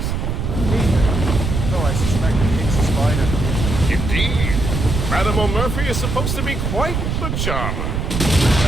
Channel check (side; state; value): right; noise; rumble, 2 dB below the sound